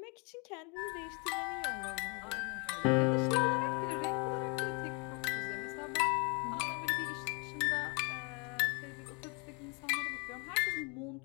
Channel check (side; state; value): right; quieter; 32.4 dB